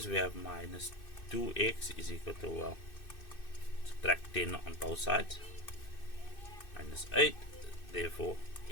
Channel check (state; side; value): late; right; 2.6 ms